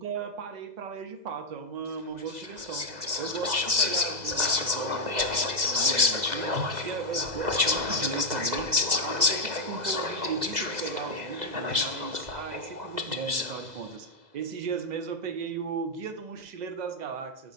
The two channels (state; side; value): late; left; 2.0 ms